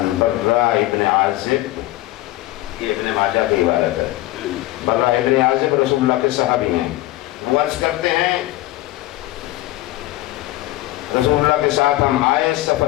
برا ابن عازب، یہ ابن ماجہ کی عبارت ہے. برا ابن عازب رسول اللہ کے صحابی ہیں. وہ عرض کرتے ہیں رسول اللہ کے ساتھ ہم آئے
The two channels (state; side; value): quieter; right; 17.0 dB